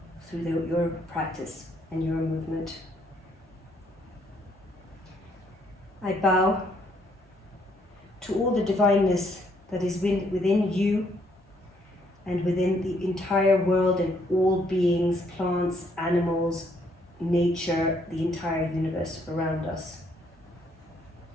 through your practice and your movement. I bow to all the divineness that is within you and within the entire world and all beings, plants, animals, nature, the entire universe around us.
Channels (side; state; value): both; normal; correlation 0.69